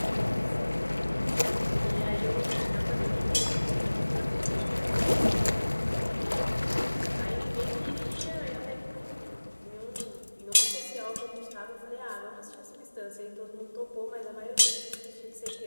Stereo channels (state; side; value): inverted; both; correlation -1.00